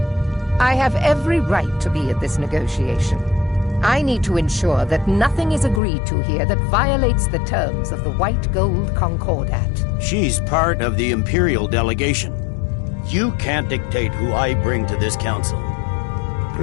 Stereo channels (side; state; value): right; drops out; at 5.8 s